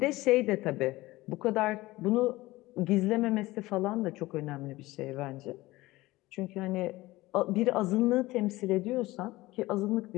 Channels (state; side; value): quieter; right; 19.0 dB